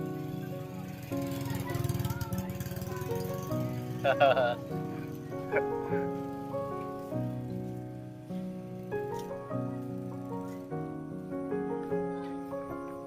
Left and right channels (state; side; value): identical; both; correlation 1.00